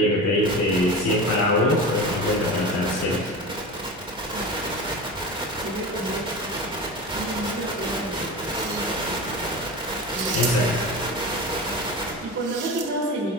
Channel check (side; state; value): both; normal; correlation 0.28